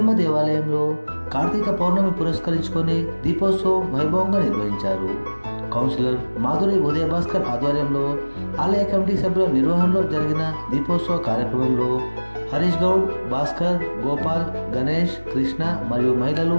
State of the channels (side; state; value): both; inverted; correlation -1.00